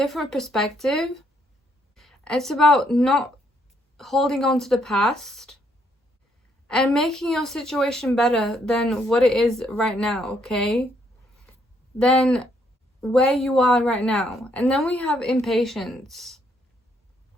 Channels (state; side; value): normal; both; correlation 0.72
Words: perspective. It's about not holding on to the past and making your situation better than what it is right now, okay? Than where you are right now. And then we have impatience.